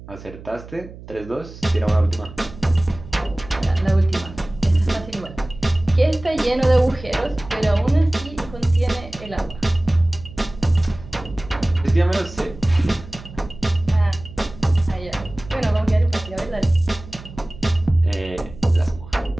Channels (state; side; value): noise; right; hum, 16 dB below the sound